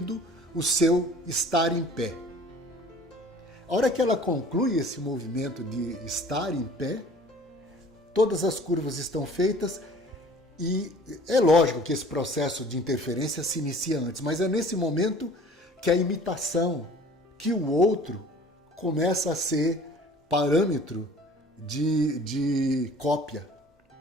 o seu estar em pé. A hora que ela conclui esse movimento de estar em pé, todas as curvas estão feitas e é lógico que esse processo de interferência se inicia antes, mas é nesse momento que a imitação, que o outro começa a ser parâmetro de cópia.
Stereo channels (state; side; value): normal; both; correlation 0.49